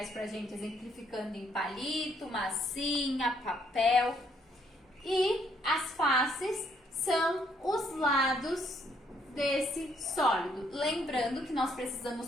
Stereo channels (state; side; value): normal; both; correlation 0.69